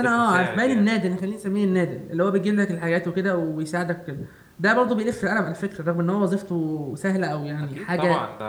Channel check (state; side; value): identical; both; correlation 1.00